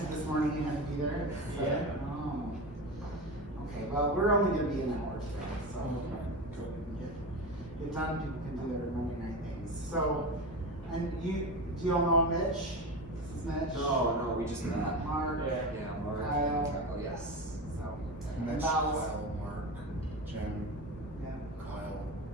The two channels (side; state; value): both; normal; correlation 0.24